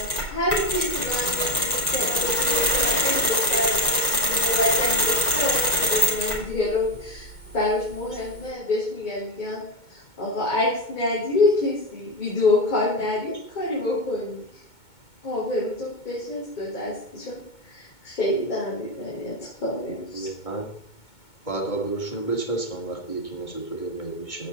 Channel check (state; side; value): late; right; 2.2 ms